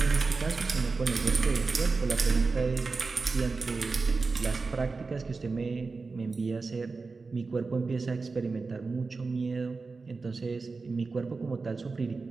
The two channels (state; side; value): quieter; left; 4.2 dB